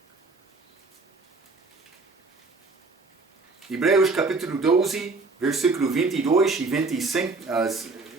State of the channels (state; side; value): quieter; left; 3.8 dB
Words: Hebreus capítulo 12, versículo 22 e 25,